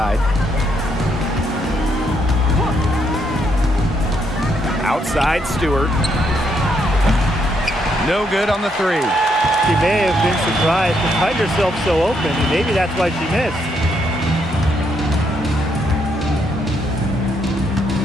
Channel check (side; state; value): both; normal; correlation 0.75